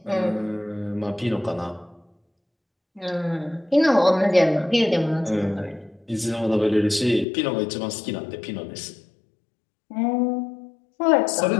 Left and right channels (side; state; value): right; drops out; at 7.2 s